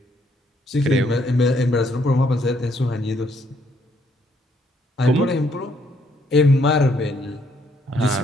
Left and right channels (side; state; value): both; normal; correlation 0.70